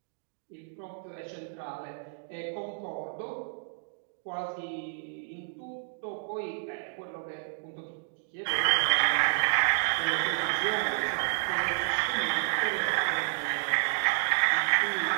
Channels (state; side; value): silent; left; digital silence